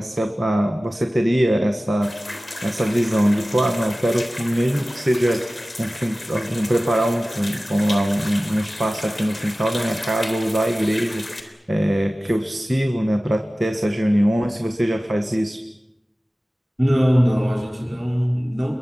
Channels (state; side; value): normal; both; correlation 0.97